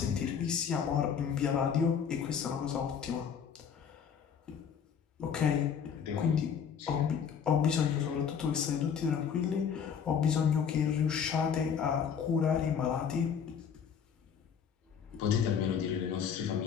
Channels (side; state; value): right; quieter; 7.4 dB